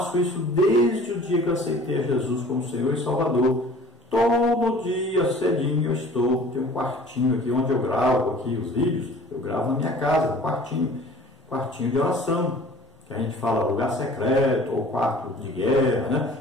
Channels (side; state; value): both; normal; correlation 0.48